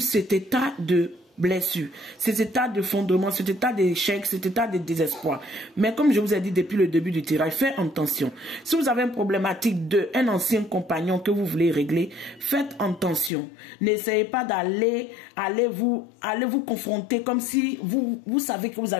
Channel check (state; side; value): drops out; right; at 13.3 s